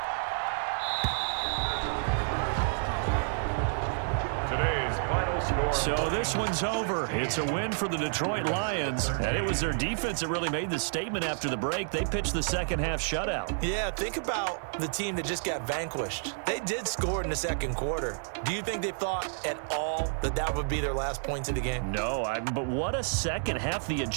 So this one's over. It's a win for the Detroit Lions, and it was their defense that really made the statement after the break. They pitched the second half shutout. Yeah, think about the team that just got vanquished. They did score in the 2nd quarter. Do you think they thought at all that that would be their last points of the game? No, but what a second half. The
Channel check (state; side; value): silent; left; digital silence